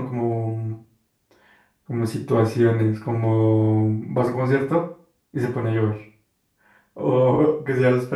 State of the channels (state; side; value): identical; both; correlation 1.00